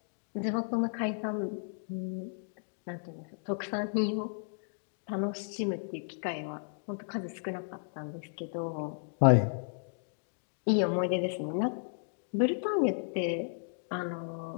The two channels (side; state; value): right; silent; digital silence